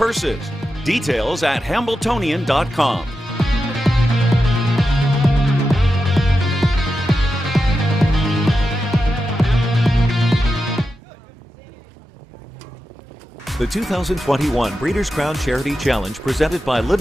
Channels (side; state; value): both; normal; correlation 0.90